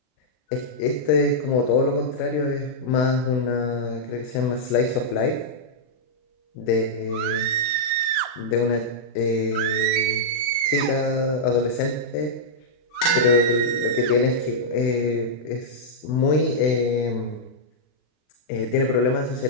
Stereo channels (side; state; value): right; late; 40 ms